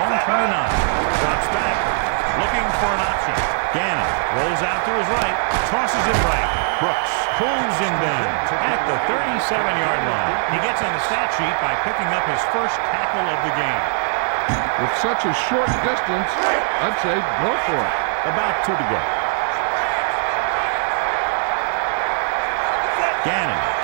own 29. Drops back. Looking for an option. Gannon rolls out to his right. Tosses it right. Brooks pulls him down at the 37-yard line. He gets on the stat sheet by picking up his first tackle of the game. With such a short distance, I'd say go for it. About 2 to go. Gannon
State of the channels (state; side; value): silent; left; 66 dB below the other